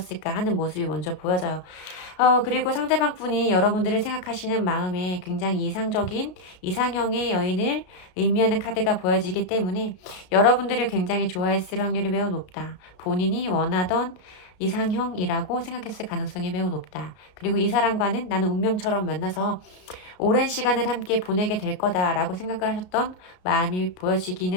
하는 모습이 먼저 보여져요. 그리고 상대방 분이 여러분들을 생각하시는 마음에 굉장히 이상적인 이상형의 여인을 의미하는 카드가 보여지기 때문에 여러분들을 굉장히 좋아했을 확률이 매우 높다. 본인이 원하던 이상형이라고 생각했을 가능성이 매우 높다. 그리고 이 사람과는 나는 운명처럼 만나서 오랜 시간을 함께 보내게 될 거다라고 생각을 하셨던 마음이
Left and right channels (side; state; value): right; late; 33 ms